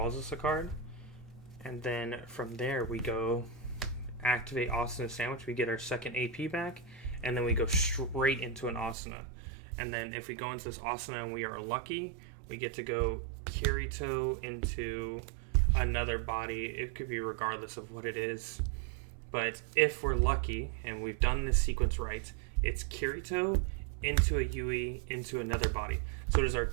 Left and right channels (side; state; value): left; drops out; at 9.0 s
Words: us a card. And then from there we go activate Asuna Sandwich. We get our second AP back. And then we go straight into an Asuna. And then if we go into this Asuna and we are lucky, we get to go Kirito into another body. It could be regardless of what it is. But if we're lucky and we've done this sequence right, it's Kirito into a Yui into another body. So it is our